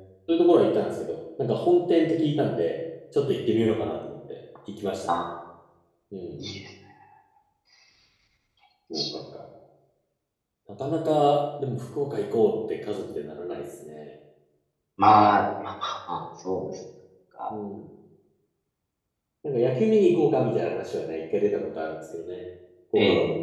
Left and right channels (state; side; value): identical; both; correlation 1.00